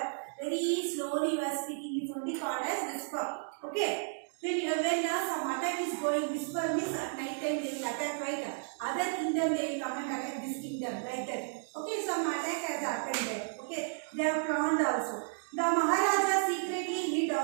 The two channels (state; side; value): silent; left; digital silence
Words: Very slowly you are speaking. It's only called as whisper. Okay. When some attack is going, whisper means at night time they will attack, right? Other kingdom they will come and attack this kingdom, like that. Okay, some attack has happened there. Okay, they are planned also. The Maharaja secretly hid